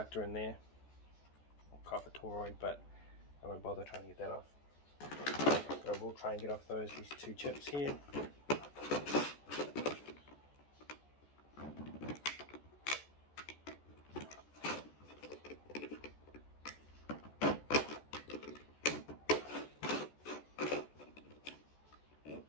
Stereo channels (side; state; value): right; late; 14 ms